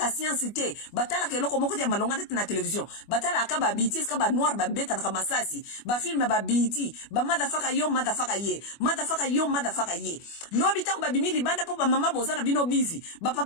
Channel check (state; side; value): late; right; 25 ms